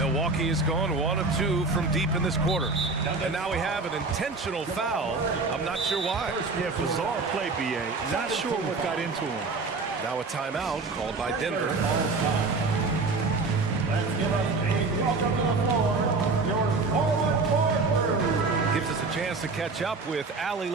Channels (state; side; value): quieter; left; 3.9 dB